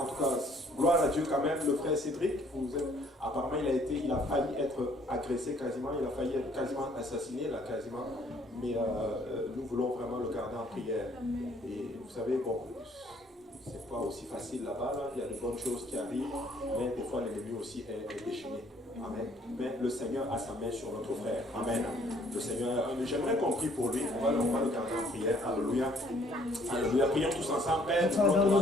tout cas, gloire à Dieu quand même, le frère Cédric, apparemment il a failli être agressé quasiment, il a failli être quasiment assassiné, là, quasiment. Mais nous voulons vraiment le garder en prière. Et vous savez, bon, c'est pas aussi facile là-bas, là. Il y a de bonnes choses qui arrivent, mais des fois l'ennemi aussi est déchaîné. Amen. Mais le Seigneur a sa main sur notre frère. Amen. Le Seigneur, j'aimerais qu'on prie pour lui. On va le garder en prière. Alléluia. Alléluia. Prions tous ensemble. Père,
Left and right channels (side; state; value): both; normal; correlation 0.61